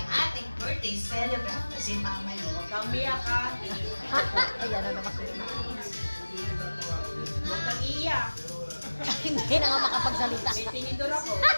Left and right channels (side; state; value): both; inverted; correlation -1.00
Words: ating birthday celebrant na si Mama Lo. Kamiyak ka. Ayan na naman. Huwag kang iiyak. Hindi na nga makapagsalita. May tinidor ako.